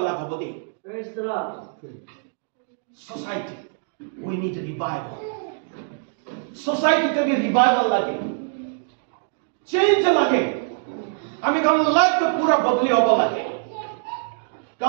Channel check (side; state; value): left; silent; digital silence